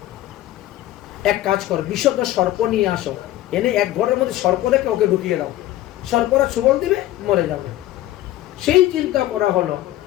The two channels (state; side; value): quieter; right; 14.7 dB